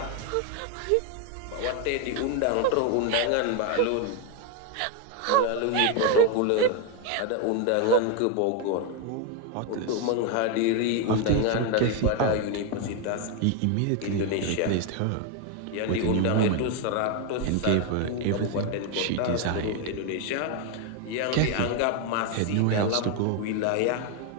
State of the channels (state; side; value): different; both; correlation 0.01